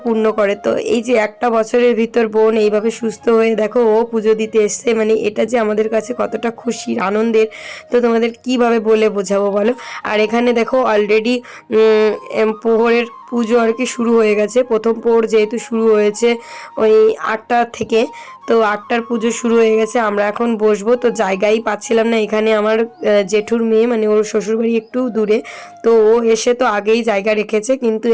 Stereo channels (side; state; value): both; identical; correlation 1.00